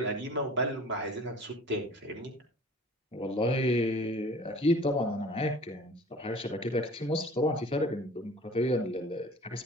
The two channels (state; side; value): normal; both; correlation 0.46